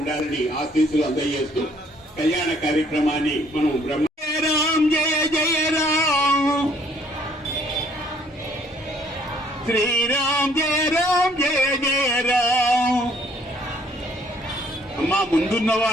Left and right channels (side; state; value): both; normal; correlation 0.62